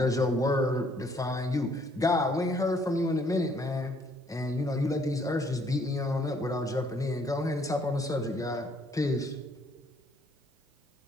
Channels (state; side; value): normal; both; correlation 0.65